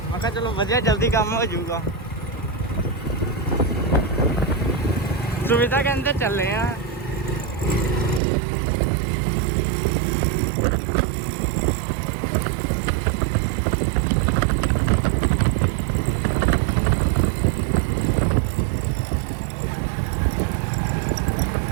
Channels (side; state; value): left; drops out; at 8.2 s